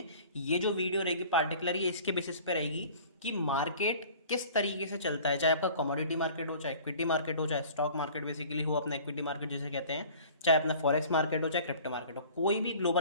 ये जो वीडियो रहेगी पार्टिकुलर ये इसके बेसिस पे रहेगी कि मार्केट किस तरीके से चलता है। चाहे आपका कमोडिटी मार्केट हो, चाहे इक्विटी मार्केट हो, चाहे स्टॉक मार्केट बेसिकली हो, अपना इक्विटी मार्केट जिसे कहते हैं, चाहे अपना फॉरेक्स मार्केट हो, चाहे क्रिप्टो मार्केट हो, कोई भी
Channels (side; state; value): both; inverted; correlation -0.46